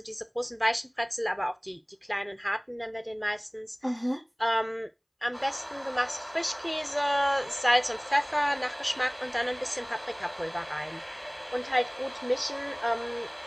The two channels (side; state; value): both; identical; correlation 1.00